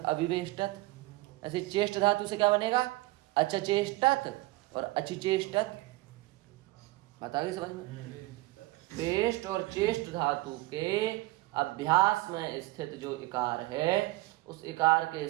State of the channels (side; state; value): left; quieter; 20.4 dB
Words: ऐसे चेष्ट धातु से क्या बनेगा, अचचेष्टत और अचिचेष्टत। बता दी समझ में। पेष्ट और चेष्ट धातु के अभ्यास में स्थित जो इकार है उस इकार के